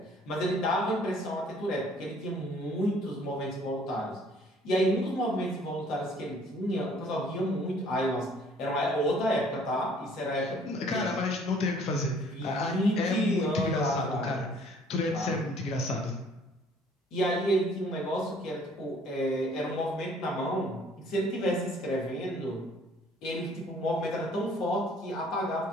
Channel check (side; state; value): both; normal; correlation 0.57